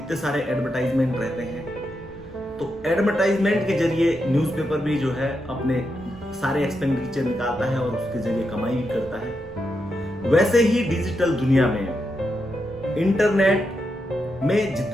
सारे एडवर्टाइजमेंट रहते हैं। तो एडवर्टाइजमेंट के जरिए न्यूज़पेपर भी जो है अपने सारे एक्सपेंडिचर निकालता है और उसके जरिए कमाई भी करता है। वैसे ही डिजिटल दुनिया में, इंटरनेट में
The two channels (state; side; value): normal; both; correlation 0.84